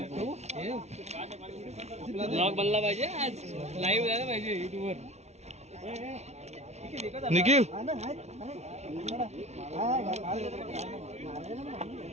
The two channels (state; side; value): late; left; 0.32 ms